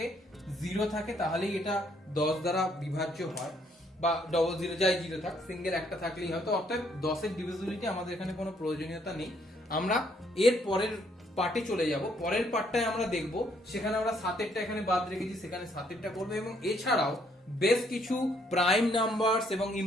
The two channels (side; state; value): both; normal; correlation 0.69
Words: থাকে তাহলেই এটা 10 দ্বারা বিভাজ্য হয়, বা ডবল 0 যাই 0 থাক, সিঙ্গেল একটা থাকলেই হয়। তো অর্থাৎ 10 এর ডিভিজিবিলিটি আমাদের এখানে কোনো প্রয়োজনীয়তা নেই। আমরা এর পরের পার্টে চলে যাব। পরের পার্টটায় আমরা দেখব, সেখানে আমরা 7 এরটা এখানে বাদ রেখেছি, সেখানে 7 এরটা করব, এবং এছাড়াও বেশ কিছু প্রাইম নাম্বারস এবং